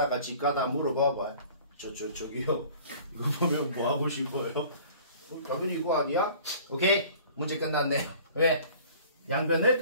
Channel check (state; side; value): inverted; both; correlation -0.49